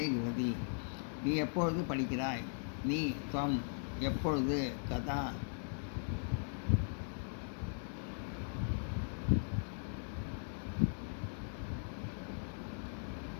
கிரதி நீ எப்பொழுது படிக்கிறாய். நீ துவம் எப்பொழுது கதா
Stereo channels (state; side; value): silent; right; digital silence